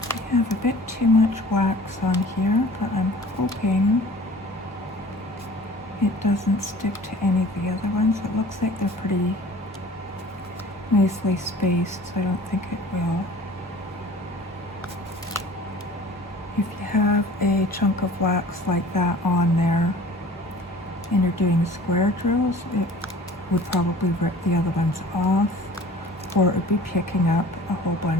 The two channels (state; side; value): normal; both; correlation 0.46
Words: I have a bit too much wax on here, but I'm hoping it doesn't stick to any of the other ones. It looks like they're pretty nicely spaced, so I don't think it will. If you have a chunk of wax like that on there and you're doing square drills, it would probably rip the other ones off, or it would be picking up a whole